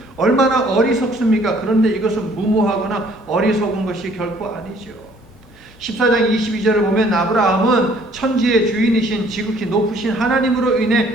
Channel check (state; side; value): normal; both; correlation 0.59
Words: 얼마나 어리석습니까? 그런데 이것은 무모하거나 어리석은 것이 결코 아니죠. 14장 22절을 보면 아브라함은 천지의 주인이신 지극히 높으신 하나님으로